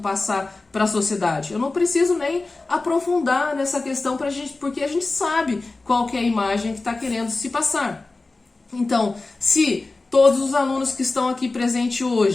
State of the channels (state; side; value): quieter; right; 3.4 dB